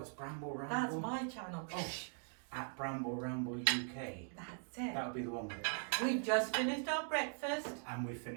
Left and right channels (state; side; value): silent; left; 50 dB below the other